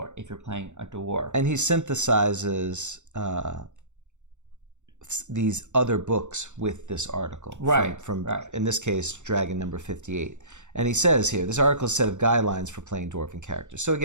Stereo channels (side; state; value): left; late; 0.84 ms